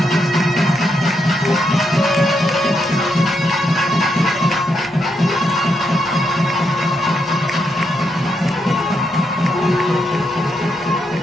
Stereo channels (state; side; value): normal; both; correlation 0.80